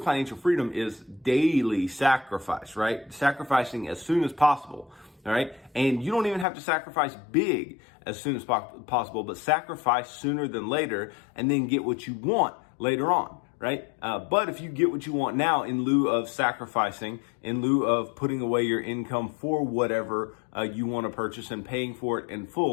freedom is daily sacrifice, right? Sacrificing as soon as possible, all right? And you don't even have to sacrifice big as soon as possible, but sacrifice sooner than later and then get what you want later on, right? But if you get what you want now in lieu of sacrificing, in lieu of putting away your income for whatever you want to purchase and paying for it in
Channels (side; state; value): right; drops out; at 6.5 s